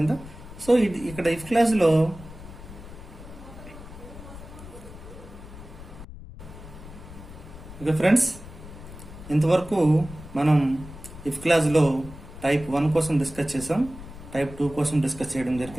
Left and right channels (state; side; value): noise; left; rumble, 15 dB below the sound